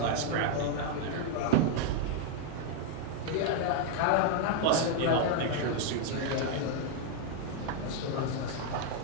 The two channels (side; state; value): both; different; correlation 0.00